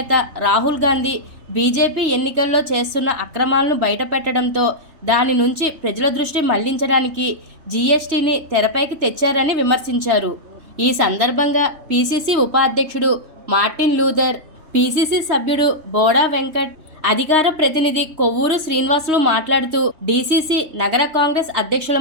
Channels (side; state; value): left; late; 3.1 ms